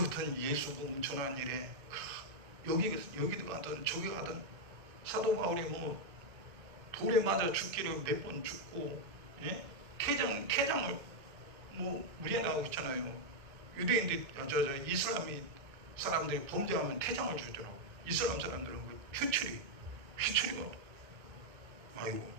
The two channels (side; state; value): left; late; 2.7 ms